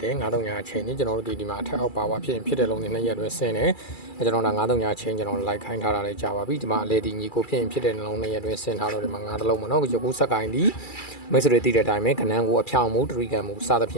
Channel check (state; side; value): late; right; 2.3 ms